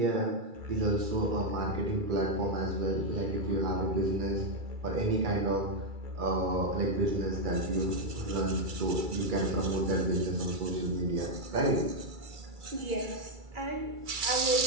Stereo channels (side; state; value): left; late; 2.3 ms